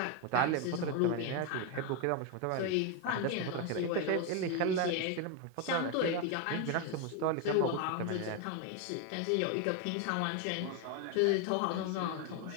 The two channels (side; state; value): both; different; correlation 0.02